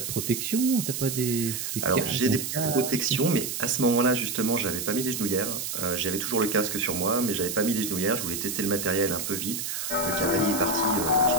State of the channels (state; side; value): noise; right; hiss, 4 dB below the sound